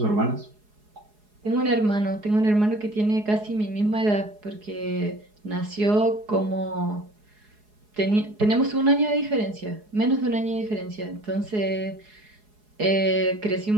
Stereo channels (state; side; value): late; left; 4.8 ms